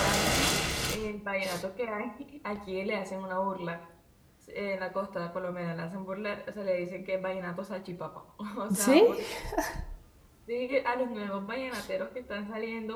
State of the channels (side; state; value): both; identical; correlation 1.00